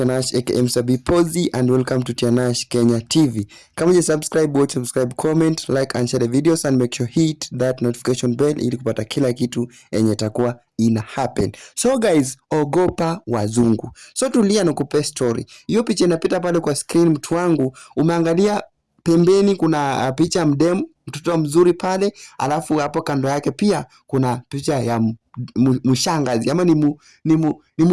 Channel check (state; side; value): identical; both; correlation 1.00